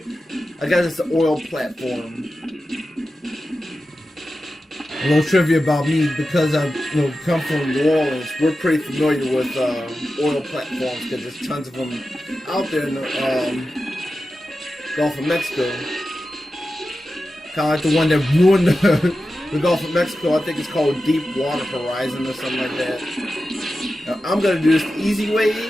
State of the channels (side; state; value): both; normal; correlation 0.92